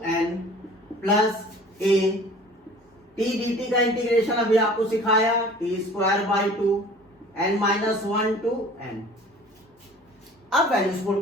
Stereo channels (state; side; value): normal; both; correlation 0.46